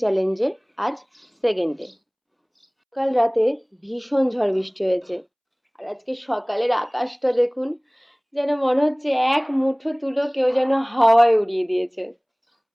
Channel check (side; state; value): both; identical; correlation 1.00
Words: চ্যালেঞ্জের আজ সেকেন্ড ডে। কাল রাতে ভীষণ ঝড় বৃষ্টি হয়েছে, আর আজকে সকালের আকাশটা দেখুন, যেন মনে হচ্ছে এক মুঠো তুলো কেউ যেন হাওয়ায় উড়িয়ে দিয়েছে।